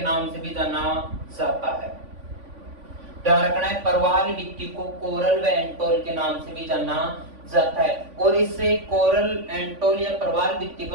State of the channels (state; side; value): late; left; 3.5 ms